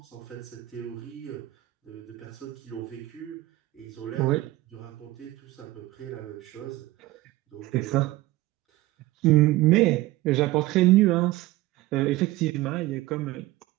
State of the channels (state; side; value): quieter; left; 17.9 dB